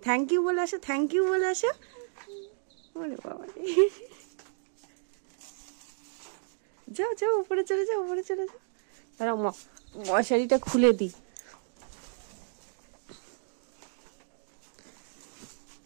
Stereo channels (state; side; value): silent; left; digital silence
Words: থ্যাংক ইউ বলে আসো, থ্যাংক ইউ বলে আসো। ওরে বাবা, যাও যাও উপরে চলে যাও, উপরে চলে যাও। তারা মশারিটা খুলে দিই।